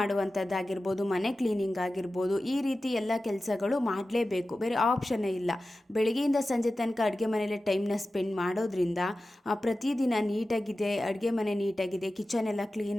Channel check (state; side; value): normal; both; correlation 0.94